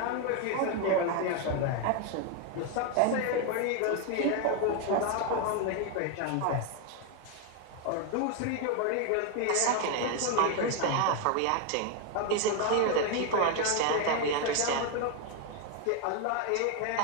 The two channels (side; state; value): both; different; correlation 0.01